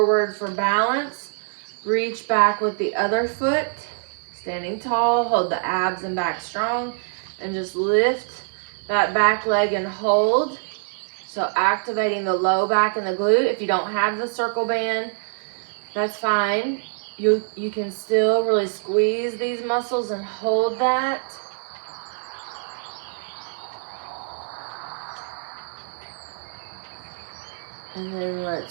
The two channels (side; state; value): left; silent; digital silence